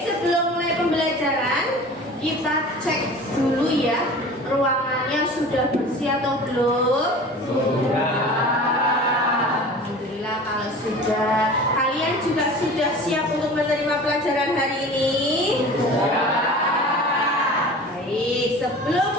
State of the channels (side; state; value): both; normal; correlation 0.39